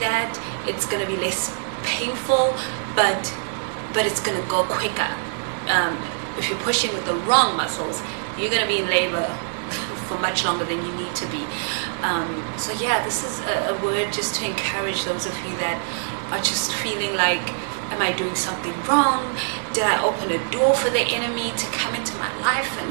it's going to be less painful, but it's going to go quicker. If you're pushing with the wrong muscles, you're going to be in labor for much longer than you need to be. So yeah, this is a word just to encourage those of you that are just feeling like, am I doing something wrong? Did I open a door for the enemy to come into my life and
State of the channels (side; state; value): left; silent; digital silence